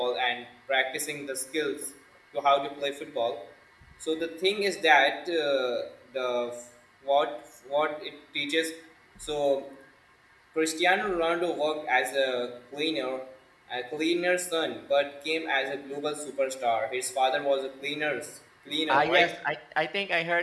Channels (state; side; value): identical; both; correlation 1.00